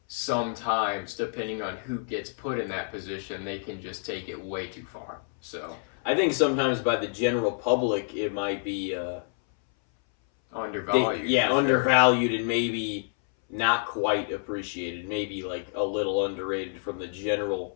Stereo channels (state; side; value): silent; right; 59 dB below the other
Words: sometimes, depending on who gets put in that position, they can just take it way too far. So I think sometimes by the general public, it might be undervalued. undervalued and maybe not quite appreciated. Maybe like a little underrated from the general